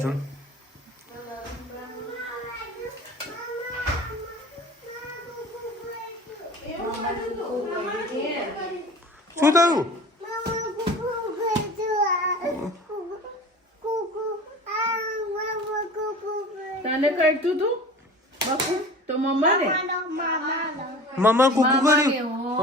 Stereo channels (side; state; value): both; normal; correlation 0.39